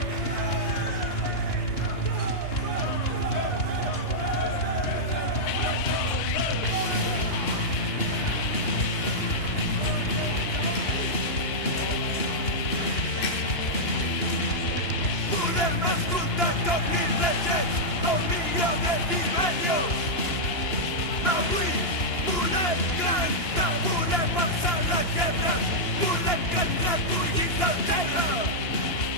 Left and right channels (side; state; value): right; late; 2.9 ms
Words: Avui volem cantar, volem alçar la guerra, volem que ens recollim del terra,